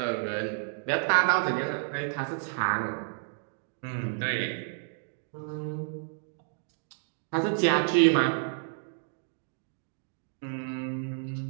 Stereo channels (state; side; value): silent; left; digital silence